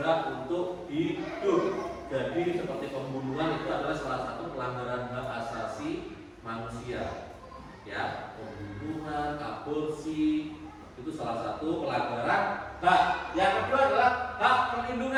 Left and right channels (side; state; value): both; identical; correlation 1.00